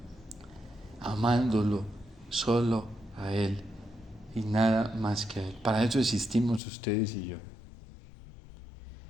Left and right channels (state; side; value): drops out; right; at 6.6 s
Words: amándolo solo a Él y nada más que a Él. Para eso existimos ustedes y yo.